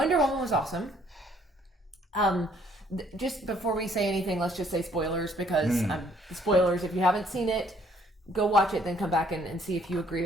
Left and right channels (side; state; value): both; normal; correlation 0.63